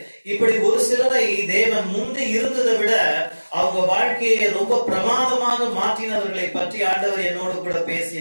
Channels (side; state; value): both; inverted; correlation -1.00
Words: இப்படி ஒரு சிலரை தேவன் முந்தி இருந்ததை விட அவங்க வாழ்க்கையை ரொம்ப பிரமாதமாக மாற்றினவர்களை பற்றி ஆண்டவர் என்னோடு கூட